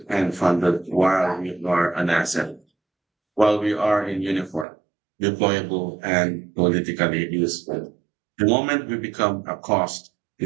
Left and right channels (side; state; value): left; drops out; at 4.7 s